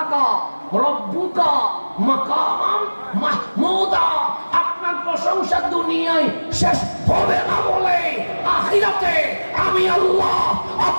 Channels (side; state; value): both; inverted; correlation -1.00